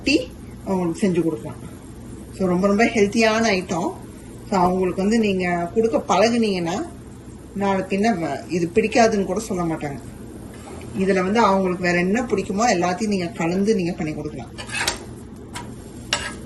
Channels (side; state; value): both; identical; correlation 1.00